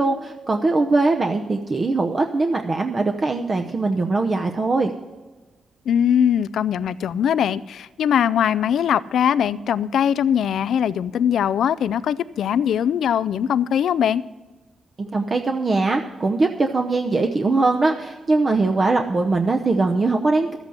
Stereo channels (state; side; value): normal; both; correlation 0.77